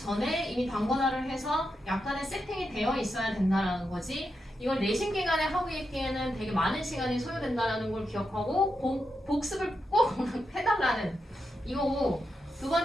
이미 단권화를 해서 약간의 세팅이 되어 있어야 된다라는 거지. 이걸 내신 기간에 하고 있기에는 되게 많은 시간이 소요된다는 걸 기억하고 복습을 꼭 해달라는 이거고 두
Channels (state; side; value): normal; both; correlation 0.86